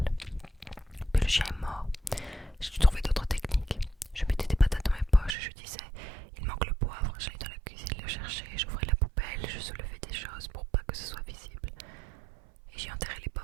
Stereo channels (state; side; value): drops out; left; at 5.4 s